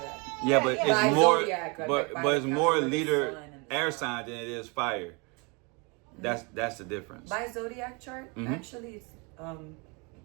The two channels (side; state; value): left; quieter; 30.6 dB